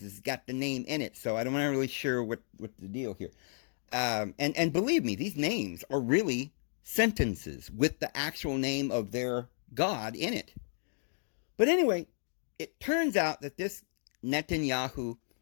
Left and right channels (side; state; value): right; silent; 56 dB below the other